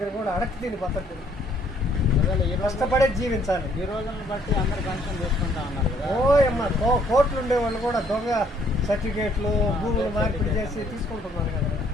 కూడా అడగ తిని బతకూడదు. కష్టపడే జీవించాలి. ఈ రోజులను బట్టి అందరు పెన్షన్ తీసుకుంటా ఉన్నారు కదా. అమ్మా కోట్లు ఉండే వాళ్ళు కూడా దొంగ సర్టిఫికేట్లు భూములు మార్పిడి చేసి తీసుకుంటున్నారు కదా.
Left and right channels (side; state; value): both; normal; correlation 0.65